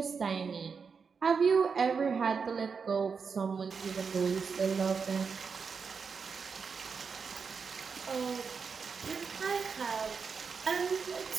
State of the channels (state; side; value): quieter; left; 5.6 dB